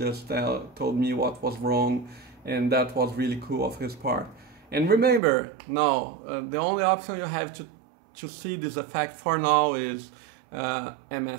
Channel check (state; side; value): drops out; left; at 5.2 s